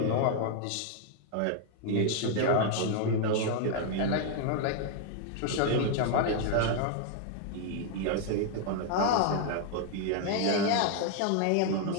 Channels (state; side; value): different; both; correlation 0.00